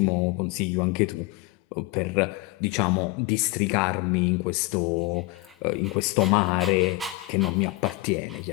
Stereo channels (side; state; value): right; quieter; 21.5 dB